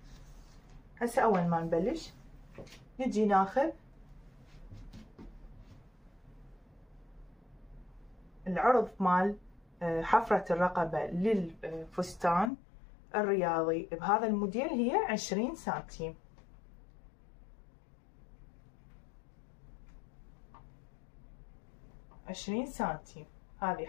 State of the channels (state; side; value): drops out; right; at 12.5 s